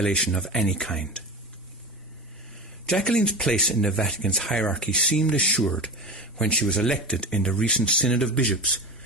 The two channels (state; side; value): normal; both; correlation 0.27